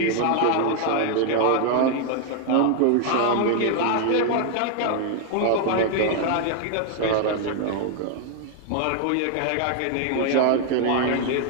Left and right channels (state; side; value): different; both; correlation 0.00